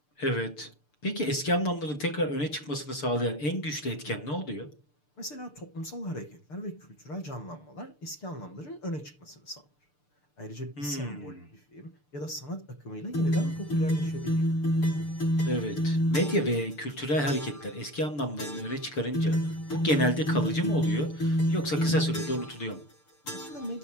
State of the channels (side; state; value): right; late; 6.8 ms